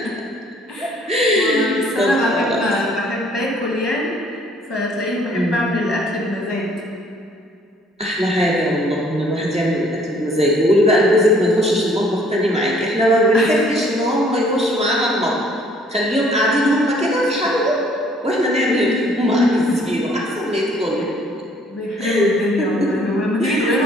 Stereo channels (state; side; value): normal; both; correlation 0.60